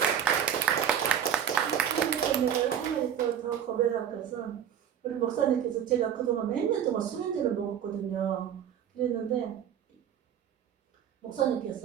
내가 한 가지 더 고백할 것은 우리 목사님께서 제가 그동안 몇 년 동안 수면제를 먹었거든요. 그랬는데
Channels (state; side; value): quieter; left; 9.1 dB